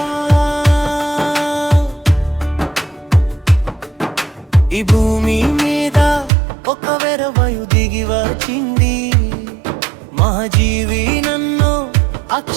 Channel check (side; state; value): left; drops out; at 6.3 s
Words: ఈ భూమి మీద ఒక వెరవయు దిగి వచ్చింది మహాజీవి నన్ను